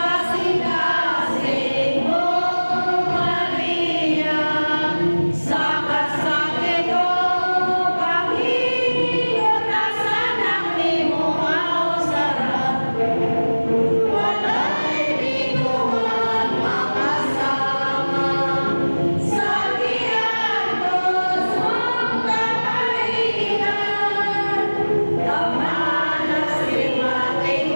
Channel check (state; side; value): inverted; both; correlation -1.00